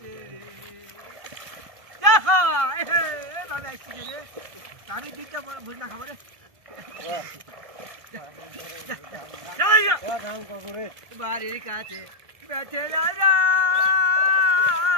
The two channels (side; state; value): left; late; 1.6 ms